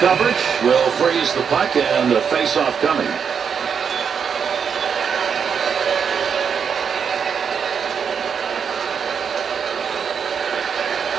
will freeze the puck and the face-off coming.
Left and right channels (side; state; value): left; quieter; 6.9 dB